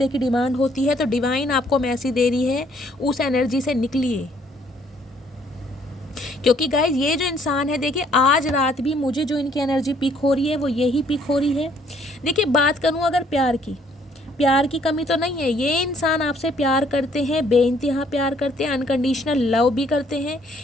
की डिमांड होती है, तो डिवाइन आपको मैसेज दे रही है, उस एनर्जी से निकलिए। क्योंकि गाइज ये जो इंसान है, देखिए आज रात भी मुझे जो इनकी एनर्जी पिक हो रही है वो यही पिक हो रही है। देखिए बात करूँ अगर प्यार की कमी तो नहीं है। ये इंसान आपसे प्यार करते हैं, बेइंतहा प्यार करते हैं, अनकंडीशनल लव भी करते हैं,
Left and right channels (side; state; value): both; normal; correlation 0.64